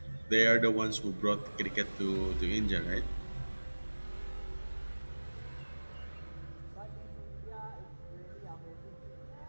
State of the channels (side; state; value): both; inverted; correlation -1.00